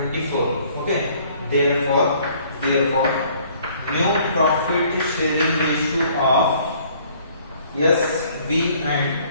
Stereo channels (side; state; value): both; inverted; correlation -0.59